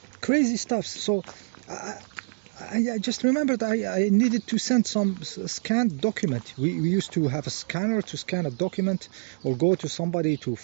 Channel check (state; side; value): silent; left; digital silence